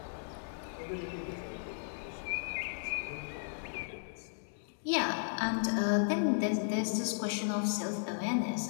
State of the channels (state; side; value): silent; right; digital silence